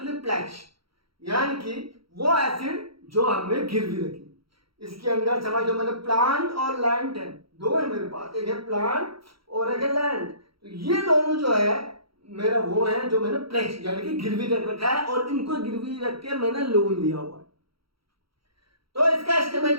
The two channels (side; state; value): left; late; 0.75 ms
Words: प्लेज, यानी कि वो एसिड जो हमने गिरवी रखी। इसके अंदर समझो मैंने प्लांट और लैंड है, 2 है मेरे पास, एक है प्लांट और एक है लैंड। तो ये दोनों जो है मेरा वो है जो मैंने प्लेज यानी कि गिरवी रख रखा है, और इनको गिरवी रख के मैंने लोन लिया हुआ है। तो इसका